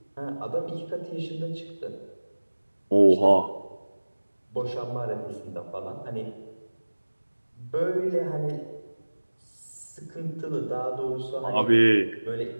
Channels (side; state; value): both; inverted; correlation -1.00